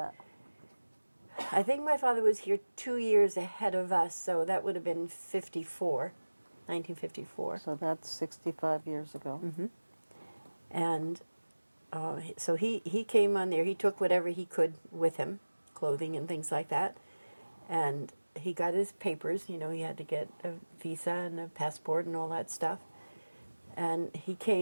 I think my father was here 2 years ahead of us, so that would have been 1954. So that's 65 years ago. And so he came on there. He took whatever he could with him, clothing and things like that. And he got his papers. You know, he had to get a visa and a passport and all that stuff. And he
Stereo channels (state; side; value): inverted; both; correlation -1.00